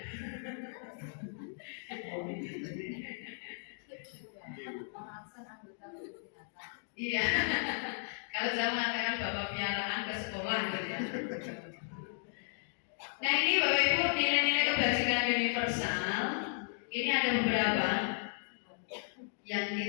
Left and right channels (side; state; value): right; silent; digital silence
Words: Iya, kalau saya mengatakan bapak piaraan ke sekolah gitu ya. Nah ini Bapak Ibu nilai-nilai kebajikan universal. Ini ada beberapa yang